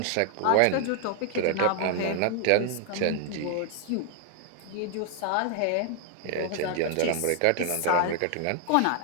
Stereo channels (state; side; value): different; both; correlation 0.00